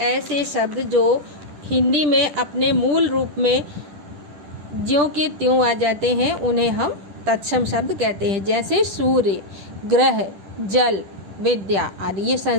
ऐसे शब्द जो हिंदी में अपने मूल रूप में ज्यों के त्यों आ जाते हैं, उन्हें हम तत्सम शब्द कहते हैं। जैसे सूर्य, ग्रह, जल, विद्या आदि ये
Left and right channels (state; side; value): late; left; 10 ms